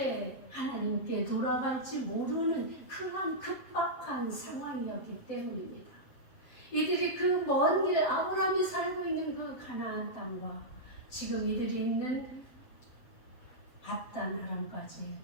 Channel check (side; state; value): right; late; 7.8 ms